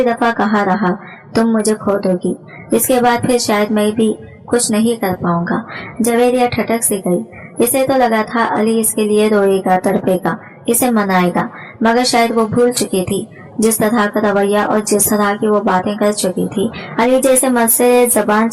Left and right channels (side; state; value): both; identical; correlation 1.00